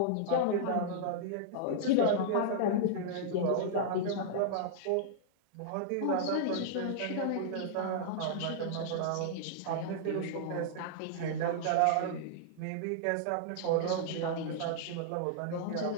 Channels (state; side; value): different; both; correlation -0.01